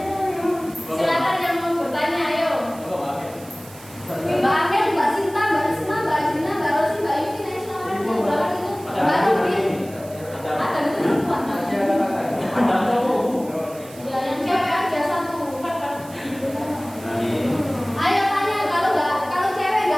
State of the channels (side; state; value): right; noise; hiss, 20 dB below the sound